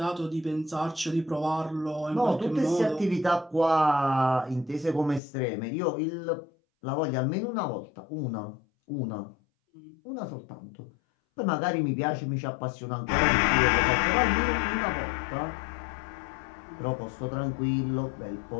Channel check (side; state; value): right; drops out; at 5.2 s